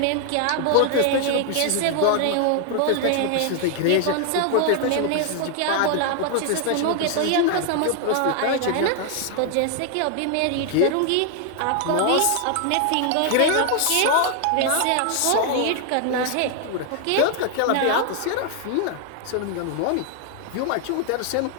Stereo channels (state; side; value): different; both; correlation 0.00